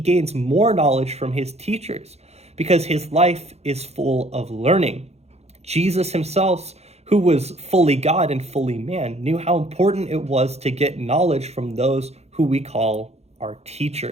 more knowledge from his teachers because his life is full of learning. Jesus himself, who was fully God and fully man, knew how important it was to get knowledge from those who we call our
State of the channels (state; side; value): late; left; 0.31 ms